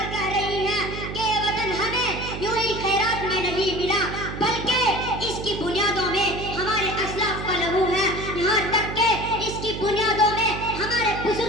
کہہ رہی ہے کہ یہ وطن ہمیں یوں ہی خیرات میں نہیں ملا بلکہ اس کی بنیادوں میں ہمارے اسلاف کا لہو ہے یہاں تک کہ اس کی بنیادوں میں ہمارے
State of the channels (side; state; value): right; noise; hum, 7 dB below the sound